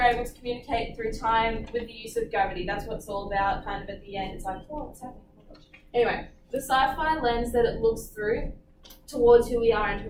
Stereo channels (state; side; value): identical; both; correlation 1.00